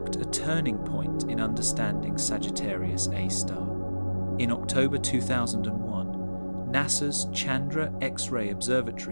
a turning point in understanding Sagittarius A-star. In October 2001, NASA's Chandra X-ray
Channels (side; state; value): both; inverted; correlation -1.00